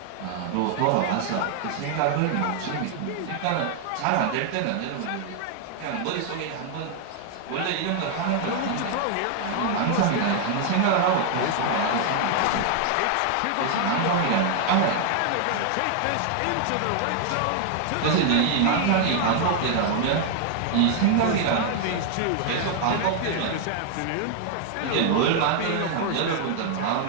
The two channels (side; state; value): both; different; correlation 0.00